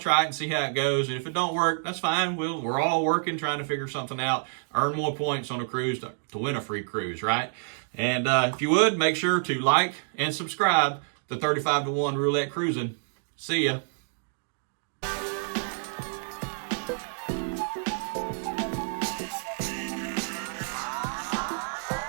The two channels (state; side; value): silent; left; digital silence